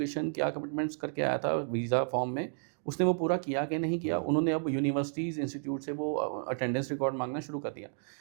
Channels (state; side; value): silent; left; 56 dB below the other